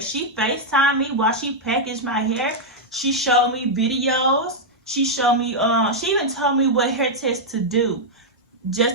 She FaceTimed me while she packaged my hair. She showed me videos. She showed me, she even told me what hair test to do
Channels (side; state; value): both; normal; correlation -0.04